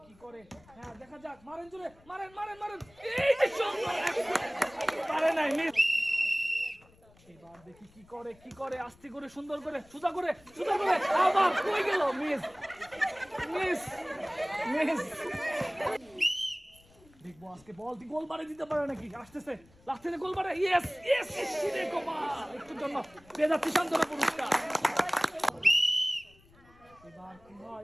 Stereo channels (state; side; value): noise; left; rumble, 28 dB below the sound